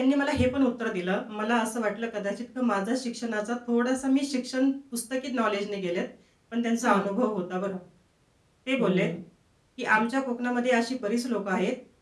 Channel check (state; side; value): identical; both; correlation 1.00